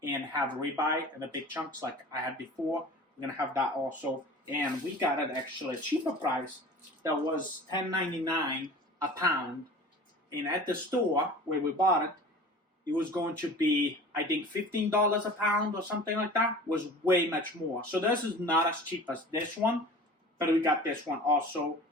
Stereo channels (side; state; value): both; normal; correlation 0.40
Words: and have ribeye in the big chunks like I had before. We're going to have that also. And we got it actually a cheaper price. That was $10.99 a pound. And at the store where we bought it, it was going to be, I think, $15 a pound or something like that. It was way much more. So this is not as cheap as this one, but we got this one also.